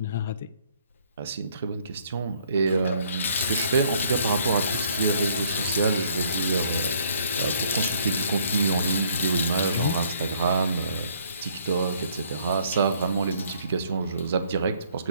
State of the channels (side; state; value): both; inverted; correlation -0.63